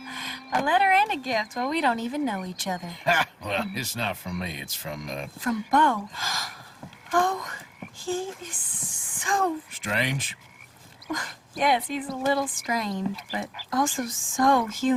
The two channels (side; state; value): both; identical; correlation 1.00